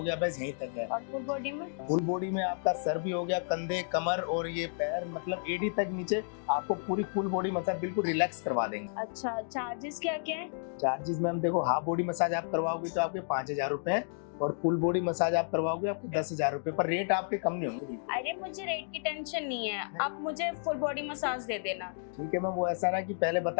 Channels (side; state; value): right; silent; digital silence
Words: गया, बस यहीं तक है। और फुल बॉडी में? फुल बॉडी में आपका सर भी हो गया, कंधे, कमर और ये पैर, मतलब एडी तक नीचे आपको पूरी फुल बॉडी मसाज बिल्कुल रिलैक्स करवा देंगे। अच्छा, चार्जेस क्या क्या है? चार्जेस मैम देखो, हाफ बॉडी मसाज आप करवाओगे तो आपके 5,000 रुपए हैं, और फुल बॉडी मसाज आप करवाओगे आपको 10,000 रुपए, पर रेट आपके कम नहीं होंगे। अरे मुझे रेट की टेंशन नहीं है, आप मुझे फुल बॉडी मसाज दे देना। ठीक है मैम, वो ऐसा ना कि पहले